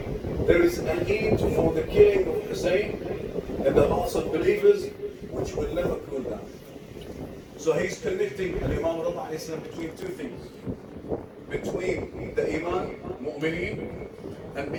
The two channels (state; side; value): identical; both; correlation 1.00